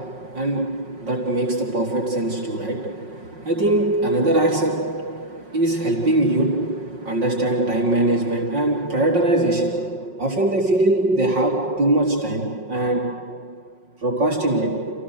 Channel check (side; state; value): left; late; 5.5 ms